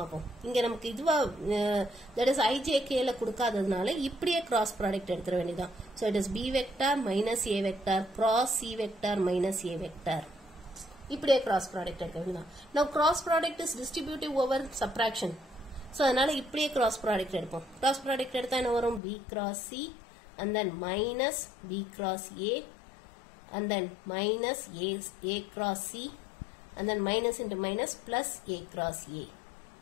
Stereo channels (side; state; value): right; drops out; at 19.0 s